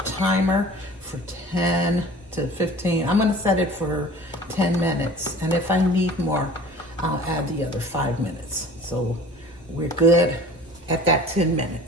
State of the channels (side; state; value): both; normal; correlation 0.44